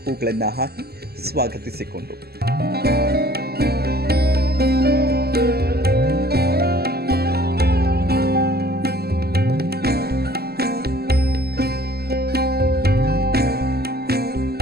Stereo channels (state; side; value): late; left; 0.46 ms